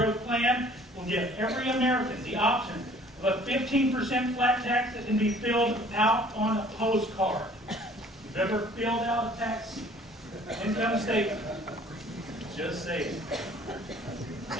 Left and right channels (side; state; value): both; normal; correlation 0.53